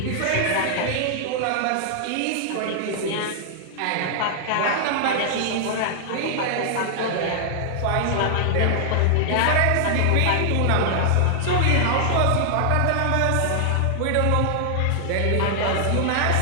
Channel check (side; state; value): both; different; correlation -0.01